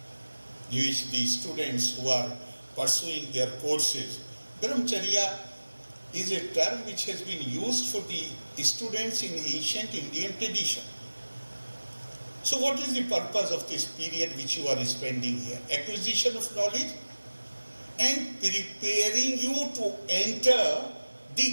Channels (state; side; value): inverted; both; correlation -1.00